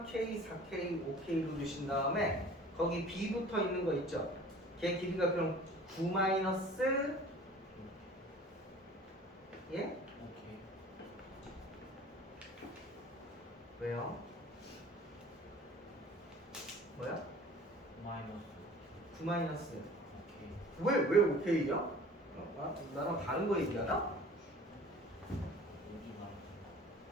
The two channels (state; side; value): normal; both; correlation 0.46